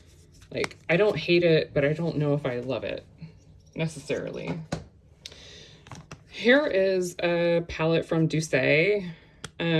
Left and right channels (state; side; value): identical; both; correlation 1.00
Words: Like, I don't hate it, but I don't know if I love it necessarily. Here is a palette from Douce.